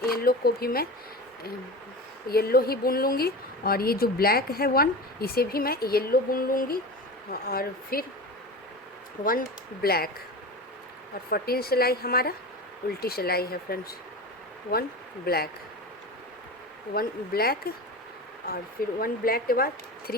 येलो को भी मैं येलो ही बुन लूँगी, और ये जो ब्लैक है 1, इसे भी मैं येलो बुन लूँगी, और फिर 1 ब्लैक, और 14 सिलाई हमारा उल्टी सिलाई है फ्रेंड्स। 1 ब्लैक, 1 ब्लैक, और फिर 1 ब्लैक के बाद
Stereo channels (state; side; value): normal; both; correlation 0.29